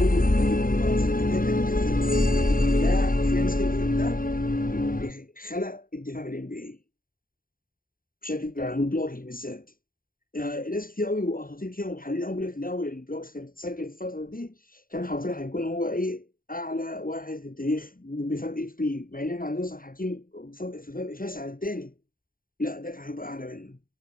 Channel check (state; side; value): late; right; 0.41 ms